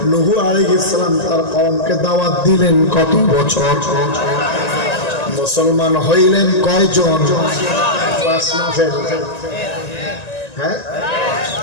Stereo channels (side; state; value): right; late; 1.9 ms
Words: নূহ আলাইহিস সালাম তার কওমকে দাওয়াত দিলেন কত বছর? মুসলমান হইলেন কয়জন? 5 না ফেল? হ্যাঁ,